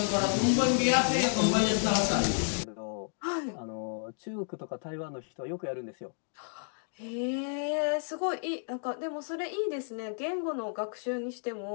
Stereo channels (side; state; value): right; silent; digital silence